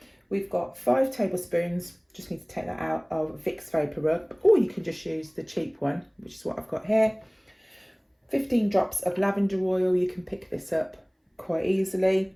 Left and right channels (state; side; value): identical; both; correlation 1.00